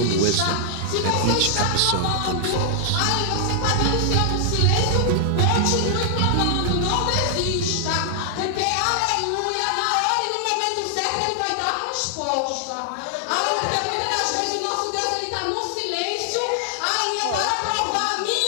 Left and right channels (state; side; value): different; both; correlation 0.00